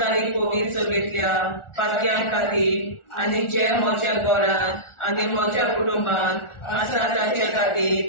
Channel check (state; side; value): late; right; 1.4 ms